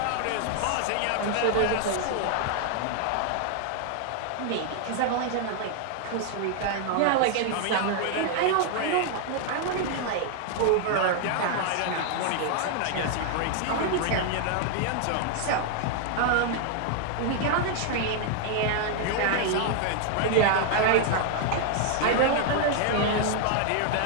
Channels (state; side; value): different; both; correlation 0.00